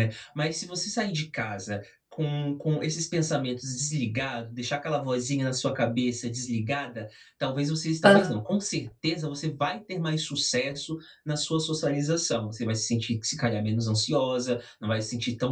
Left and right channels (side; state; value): both; identical; correlation 1.00